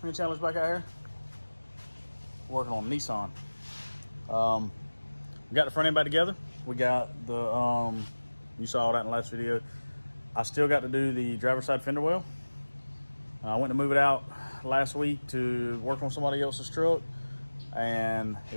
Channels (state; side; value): inverted; both; correlation -1.00